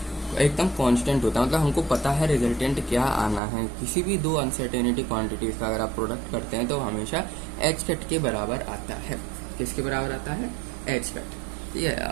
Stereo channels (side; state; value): left; drops out; at 3.4 s